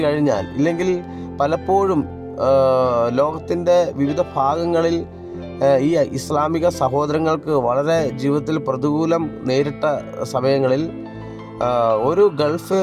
കഴിഞ്ഞാൽ, ഇല്ലെങ്കിൽ പലപ്പോഴും ലോകത്തിൻ്റെ വിവിധ ഭാഗങ്ങളിൽ ഈ ഇസ്ലാമിക സഹോദരങ്ങൾക്ക് വളരെ ജീവിതത്തിൽ പ്രതികൂലം നേരിട്ട സമയങ്ങളിൽ ഒരു ഗൾഫ്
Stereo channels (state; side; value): identical; both; correlation 1.00